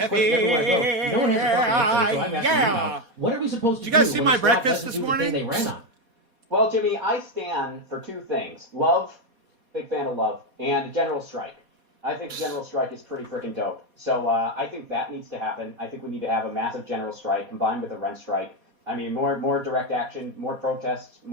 question everywhere I go. No one has a fucking answer, so I'm asking you now. What are we supposed to Did do? you guys see when my the squad breakfast doesn't this do the morning? thing they ran on? Well, Jimmy, I stand for two things. Love, big fan of love, and a general strike. I think the general strike is pretty freaking dope. So I think that needs to happen. I think we need to have a massive general strike combined with a rent strike. I mean, more direct action, more protests,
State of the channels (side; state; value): left; late; 4.2 ms